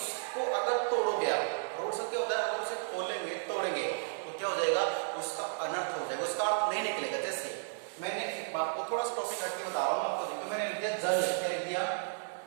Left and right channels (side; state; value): left; silent; 55 dB below the other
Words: अगर तोड़ोगे आप, रूढ़ शब्द क्या होता है, अगर उसे खोलेंगे, तोड़ेंगे तो क्या हो जाएगा, उसका अनर्थ हो जाएगा, उसका अर्थ नहीं निकलेगा। जैसे मैंने एक बात को थोड़ा सा टॉपिक हट के बता रहा हूँ आपको, देखिए मैंने लिख दिया जल, क्या लिख दिया,